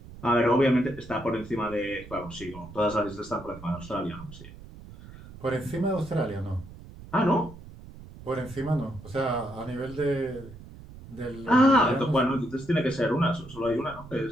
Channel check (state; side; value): noise; right; rumble, 16 dB below the sound